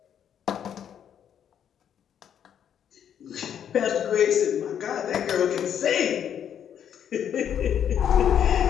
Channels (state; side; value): quieter; right; 9.1 dB